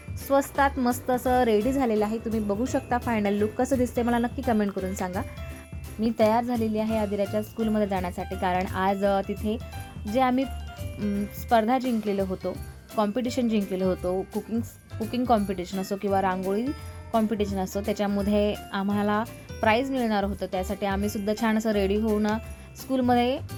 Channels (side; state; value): both; identical; correlation 1.00